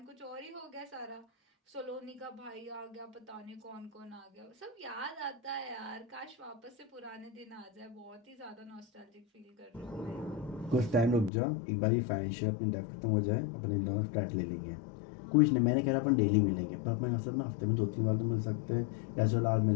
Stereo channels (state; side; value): drops out; right; at 11.3 s